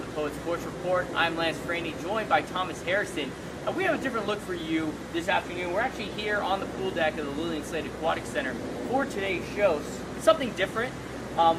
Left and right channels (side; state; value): both; identical; correlation 1.00